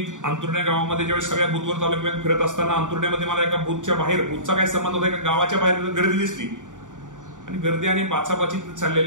अंतुर्ण्या गावामध्ये ज्यावेळेस सगळ्या बुथवर तालुक्यात फिरत असताना अंतुर्ण्यामध्ये मला एका बुथच्या बाहेर, बुथचा काय संबंध होता, एका गावाच्या बाहेर गर्दी दिसली आणि गर्दी आणि बाचाबाची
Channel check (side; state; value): left; late; 0.87 ms